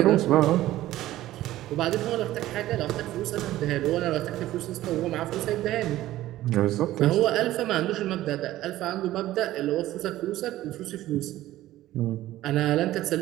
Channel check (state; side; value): quieter; left; 15.0 dB